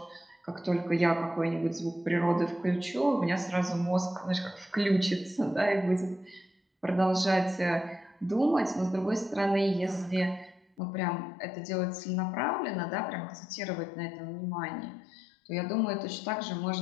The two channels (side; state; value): right; drops out; at 10.7 s